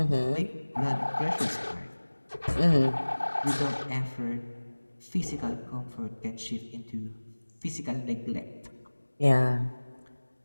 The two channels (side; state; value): both; inverted; correlation -1.00